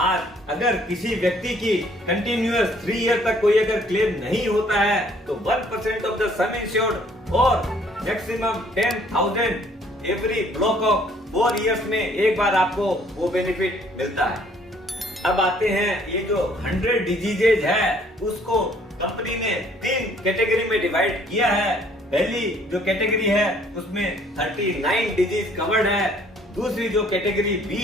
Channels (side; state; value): both; normal; correlation 0.61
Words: अगर किसी व्यक्ति की कंटिन्यूअस 3 ईयर तक कोई अगर क्लेम नहीं होता है तो 1% ऑफ द सम इंश्योर्ड और maximum 10,000 every block of 4 years में एक बार आपको वो बेनिफिट मिलता है। अब आते हैं ये जो 100 डिजीजेज है उसको कंपनी ने 3 कैटेगरी में डिवाइड किया है। पहली जो कैटेगरी है उसमें 39 डिजीज कवर्ड है। दूसरी जो कैटेगरी बी